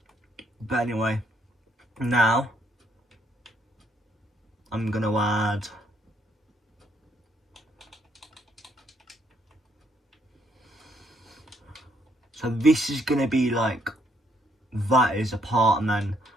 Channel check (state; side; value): normal; both; correlation 0.71